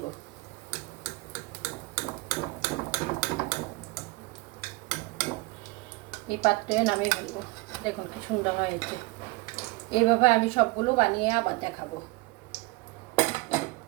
এই পাত্রে নামিয়ে ফেলবো। দেখুন কি সুন্দর হয়েছে। এইভাবে আমি সবগুলো বানিয়ে আবার দেখাবো।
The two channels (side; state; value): left; quieter; 24.0 dB